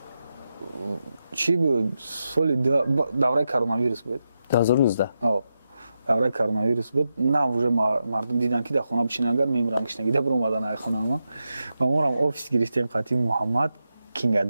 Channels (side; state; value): both; inverted; correlation -0.88